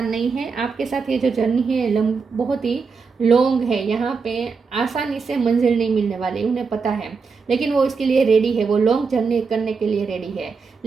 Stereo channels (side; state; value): left; quieter; 5.1 dB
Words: नहीं है, आपके साथ ये जो जर्नी है बहुत ही लॉन्ग है, यहाँ पे आसानी से मंजिल नहीं मिलने वाली, उन्हें पता है। लेकिन वो इसके लिए रेडी है, वो लॉन्ग जर्नी करने के लिए रेडी है।